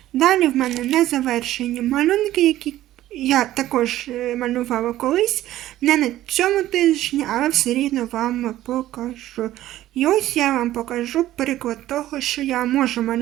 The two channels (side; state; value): left; quieter; 14.2 dB